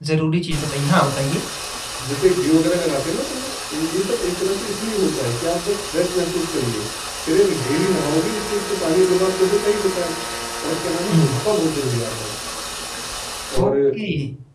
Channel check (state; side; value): identical; both; correlation 1.00